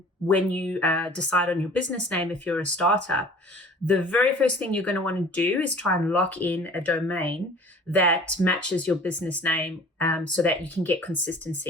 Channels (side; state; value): both; normal; correlation 0.47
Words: when you decide on your business name if you're a startup, the very first thing you're going to want to do is try and lock in a domain that matches your business name so that you can get